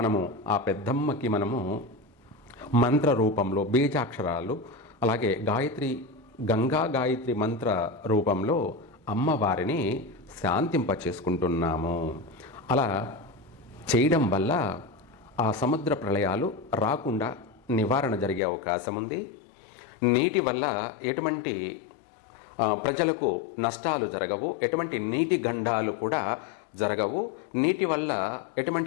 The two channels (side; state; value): right; drops out; at 18.4 s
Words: ఆ పెద్దమ్మకి మనము మంత్ర రూపంలో బీజాక్షరాలు, అలాగే గంగా గాయత్రి మంత్ర రూపంలో అమ్మవారిని శాంతింపచేసుకుంటున్నాము. అలా చేయడం వల్ల ఆ సముద్ర ప్రళయాలు రాకుండా నివారణ జరిగే అవకాశం ఉంది. నీటి వల్ల ఎటువంటి ప్రజలకు నష్టాలు జరగవు, ఎటువంటి నీటి గండాలు కూడా జరగవు. నీటి వల్ల